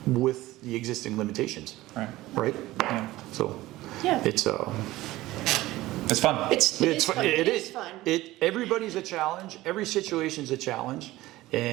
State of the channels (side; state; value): left; quieter; 17.4 dB